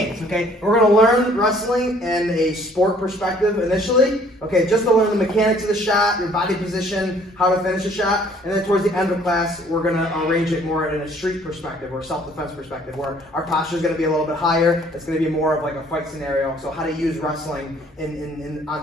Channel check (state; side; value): normal; both; correlation 0.59